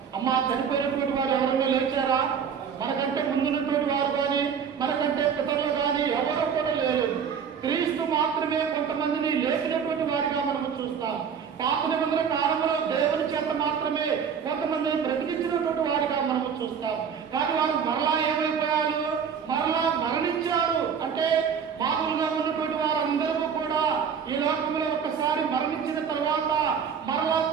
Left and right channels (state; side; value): quieter; left; 7.1 dB